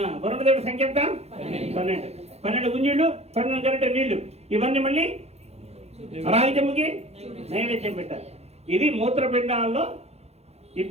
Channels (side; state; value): left; late; 0.31 ms